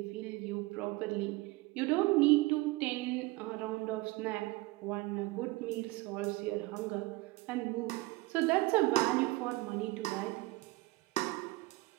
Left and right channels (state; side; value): quieter; left; 21.5 dB